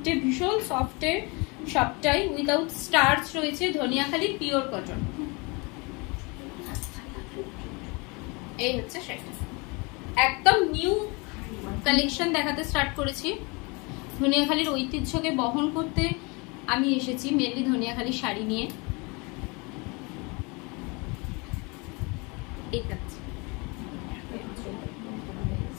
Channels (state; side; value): quieter; right; 28.6 dB